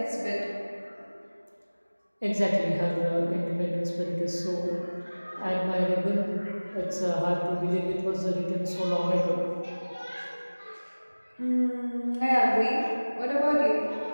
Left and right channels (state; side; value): inverted; both; correlation -1.00